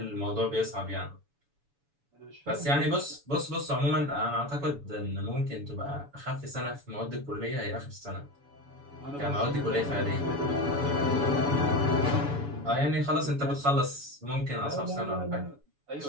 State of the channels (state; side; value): late; left; 7.0 ms